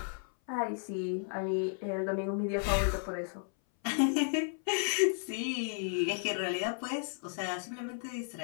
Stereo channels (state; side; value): silent; right; 55 dB below the other